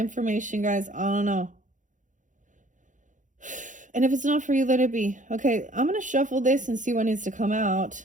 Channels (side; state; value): left; late; 0.37 ms